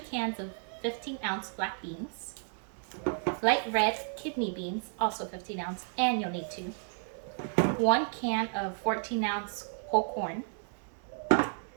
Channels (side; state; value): left; silent; 56 dB below the other